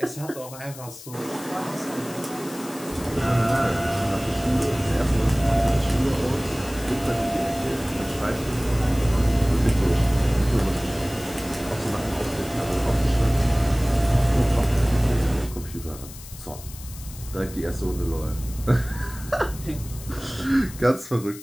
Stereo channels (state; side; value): noise; left; hiss, 16 dB below the sound